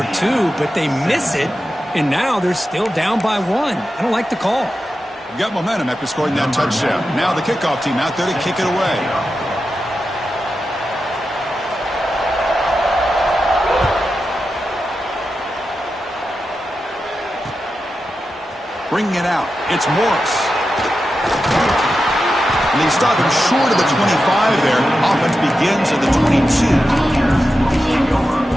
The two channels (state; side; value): normal; both; correlation 0.90